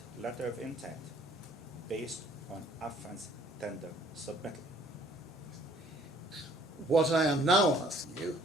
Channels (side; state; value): both; normal; correlation 0.59